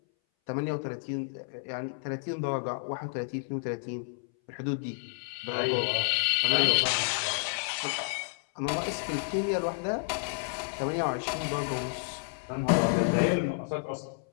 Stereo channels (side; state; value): right; silent; 57 dB below the other